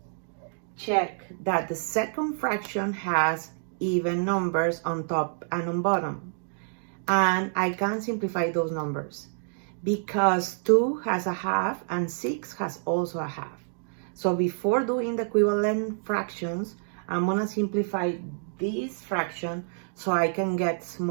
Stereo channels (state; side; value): silent; left; digital silence